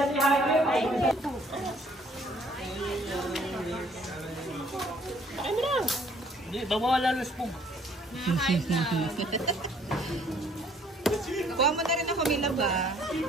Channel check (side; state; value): both; normal; correlation 0.60